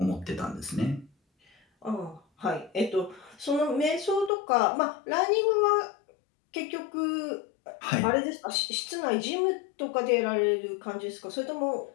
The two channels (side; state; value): right; drops out; at 4.3 s